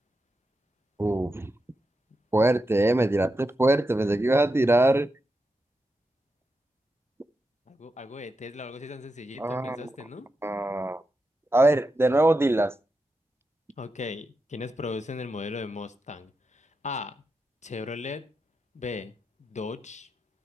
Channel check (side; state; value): both; normal; correlation 0.88